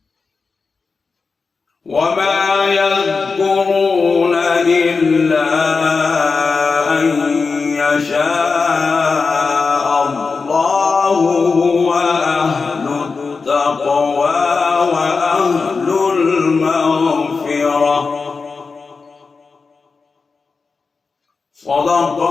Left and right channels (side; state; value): right; quieter; 4.6 dB